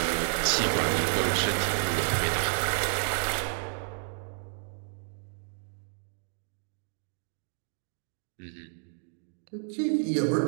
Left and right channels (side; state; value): left; silent; 57 dB below the other